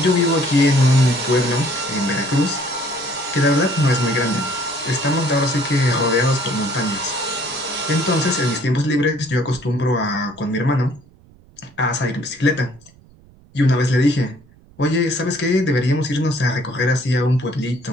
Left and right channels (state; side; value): noise; right; rumble, 27 dB below the sound